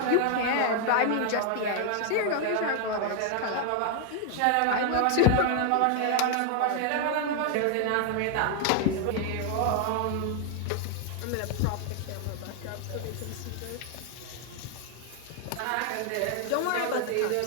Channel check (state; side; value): different; both; correlation 0.00